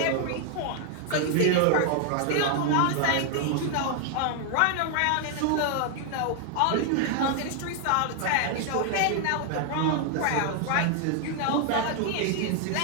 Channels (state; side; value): different; both; correlation 0.00